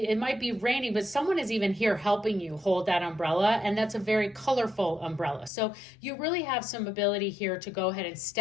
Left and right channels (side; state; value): right; drops out; at 5.5 s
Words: might be raining, but someone is even here helping you hold that umbrella, and that's a very colorful umbrella. So you really have some ability here to go ahead and